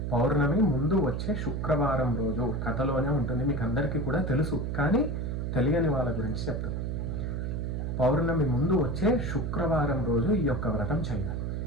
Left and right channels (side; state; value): right; noise; hum, 2 dB below the sound